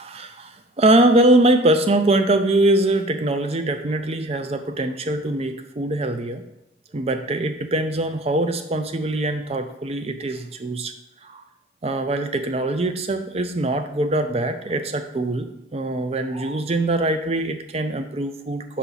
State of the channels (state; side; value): normal; both; correlation 0.45